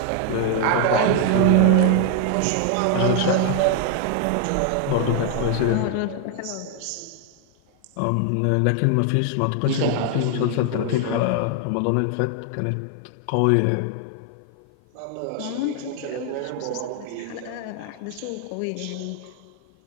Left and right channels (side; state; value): both; different; correlation 0.00